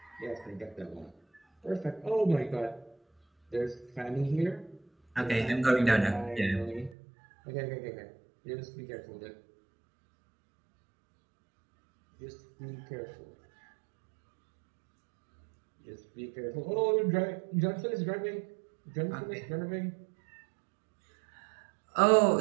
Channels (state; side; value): drops out; left; at 7.0 s